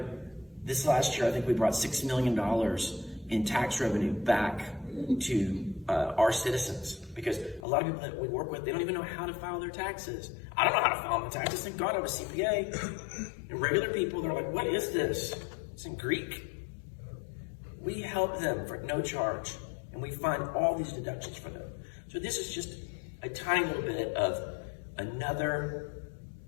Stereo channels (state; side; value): drops out; right; at 7.7 s